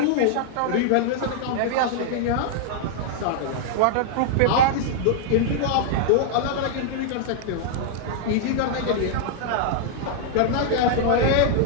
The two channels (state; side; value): different; both; correlation -0.01